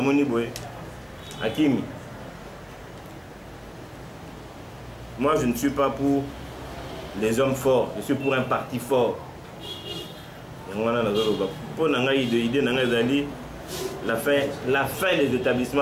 moni boye akimi. Moi je ne suis pas pour les hommes forts, je suis pour un parti fort. Pour idée la fin des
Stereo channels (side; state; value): both; identical; correlation 1.00